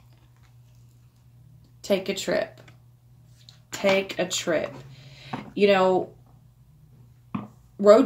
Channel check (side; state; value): both; identical; correlation 1.00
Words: Take a trip. Take a trip. You know,